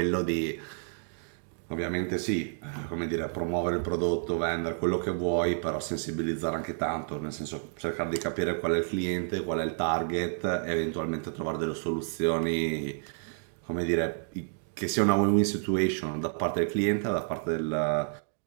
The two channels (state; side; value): silent; left; digital silence